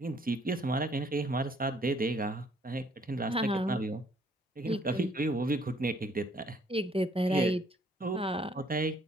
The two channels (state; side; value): normal; both; correlation 0.63